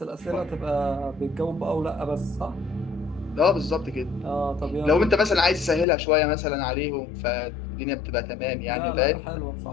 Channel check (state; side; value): drops out; right; at 5.9 s